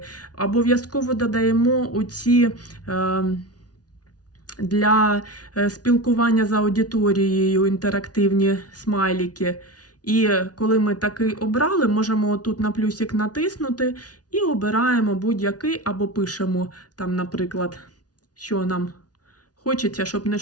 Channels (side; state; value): right; late; 0.69 ms